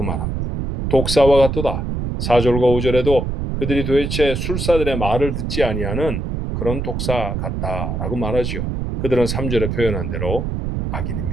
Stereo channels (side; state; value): right; noise; rumble, 3 dB below the sound